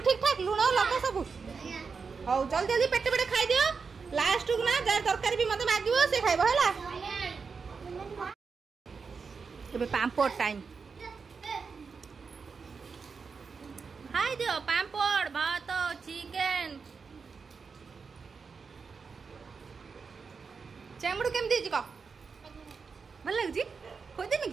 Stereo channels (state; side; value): quieter; left; 5.2 dB